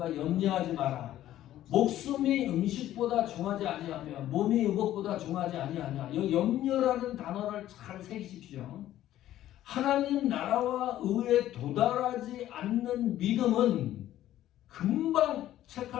염려하지 마라. 목숨이 음식보다 중하지 아니하며 몸이 의복보다 중하지 아니하냐. 이 염려라는 단어를 잘 새기십시오. 하나님 나라와 의에 도달하지 않는 믿음은 금방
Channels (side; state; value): right; quieter; 13.1 dB